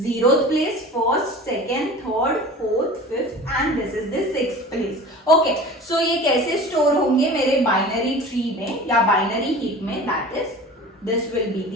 place, first, second, third, fourth, fifth and this is the sixth place. Okay, so ये कैसे store होंगे मेरे बाइनरी ट्री में या बाइनरी हीप में, that is this will be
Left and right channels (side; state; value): both; normal; correlation 0.39